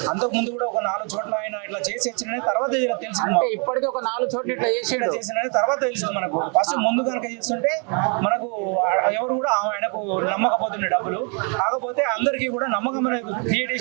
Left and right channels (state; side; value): quieter; left; 37.0 dB